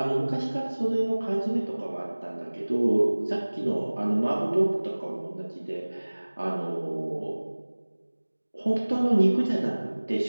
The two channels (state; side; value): inverted; both; correlation -1.00